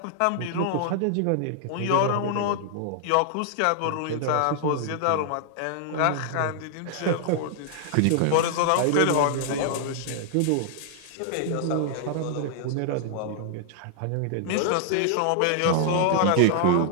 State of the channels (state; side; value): different; both; correlation -0.01